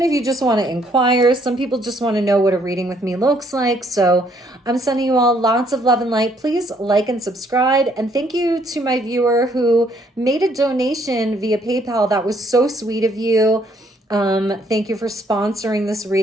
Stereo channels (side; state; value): both; normal; correlation 0.67